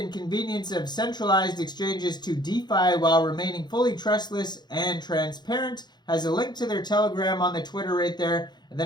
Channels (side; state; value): right; late; 0.21 ms